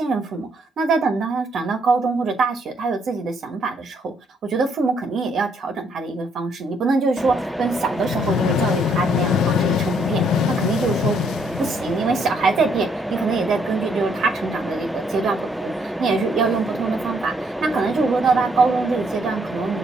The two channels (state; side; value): normal; both; correlation 0.70